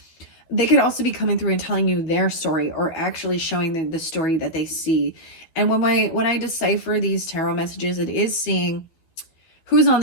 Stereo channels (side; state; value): right; late; 12 ms